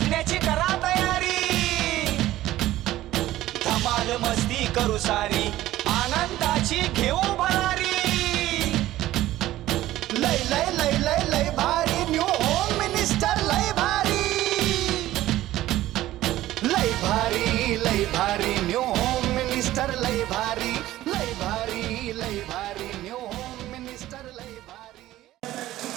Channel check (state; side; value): quieter; left; 15.1 dB